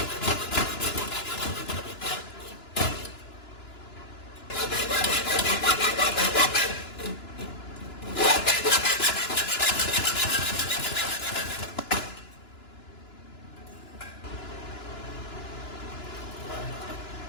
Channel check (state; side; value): late; right; 2.9 ms